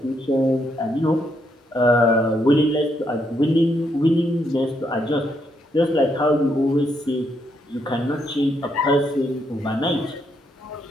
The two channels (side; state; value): both; normal; correlation 0.76